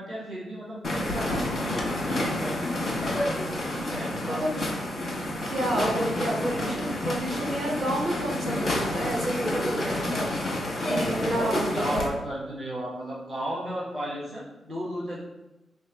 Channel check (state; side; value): normal; both; correlation 0.81